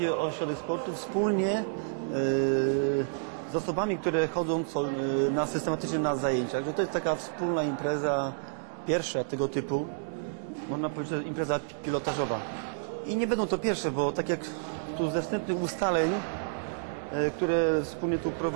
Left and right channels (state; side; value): silent; left; digital silence